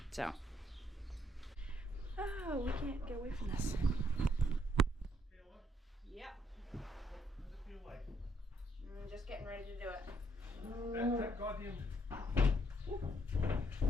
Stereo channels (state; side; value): normal; both; correlation 0.72